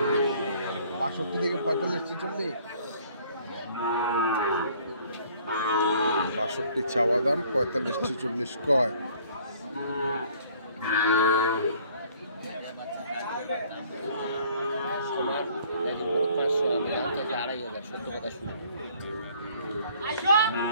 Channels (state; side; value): inverted; both; correlation -0.58